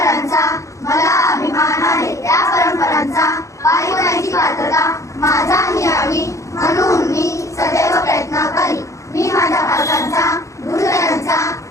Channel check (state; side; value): late; right; 0.15 ms